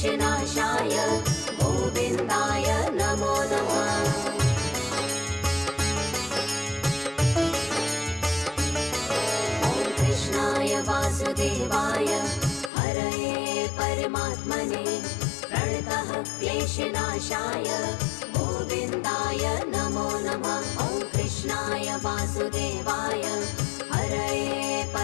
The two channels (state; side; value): drops out; right; at 12.7 s